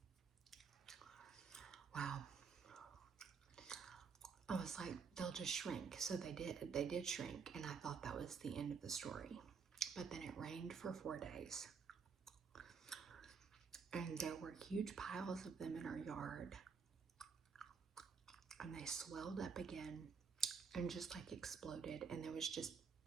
Wow. I was like, they'll just shrink. So they did shrink, and I thought that was the end of the story. But then it rained for 4 days. And there were huge piles of them in our yard. And they swelled up again and just like exploded. And there was just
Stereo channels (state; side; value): quieter; left; 5.7 dB